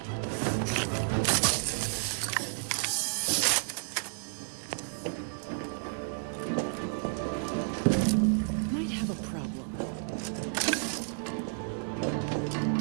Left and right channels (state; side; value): silent; left; 57 dB below the other